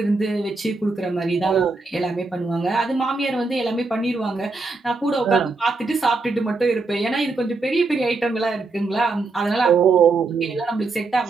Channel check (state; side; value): quieter; left; 3.7 dB